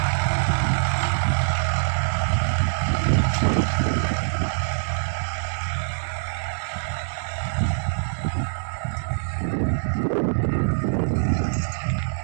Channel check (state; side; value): silent; left; 63 dB below the other